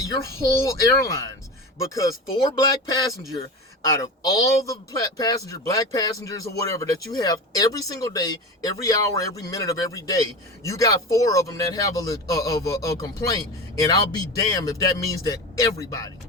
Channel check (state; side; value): normal; both; correlation 0.27